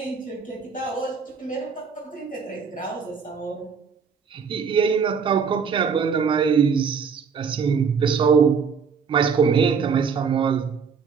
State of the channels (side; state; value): left; quieter; 6.0 dB